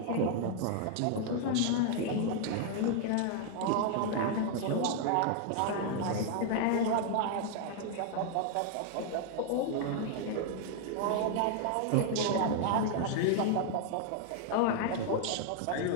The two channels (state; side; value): different; both; correlation 0.00